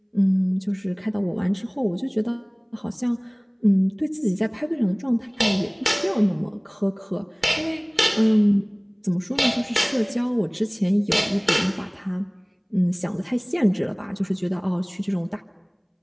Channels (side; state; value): both; identical; correlation 1.00